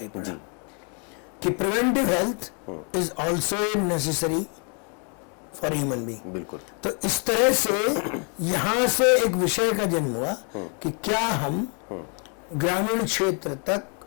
पड़ा कि preventive health is also necessary for human being. बिल्कुल। तो इस तरह से यहाँ से एक विषय का जन्म हुआ कि क्या हम ग्रामीण क्षेत्र तक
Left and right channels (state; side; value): quieter; right; 38.3 dB